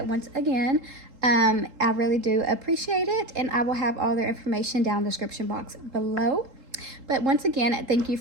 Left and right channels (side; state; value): left; late; 3.7 ms